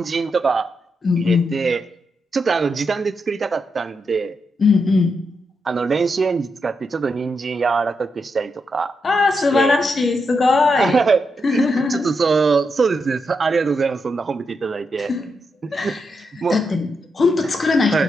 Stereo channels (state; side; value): normal; both; correlation 0.83